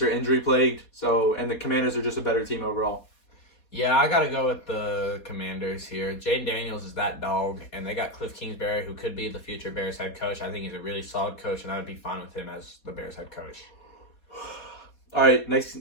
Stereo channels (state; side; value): late; right; 4.2 ms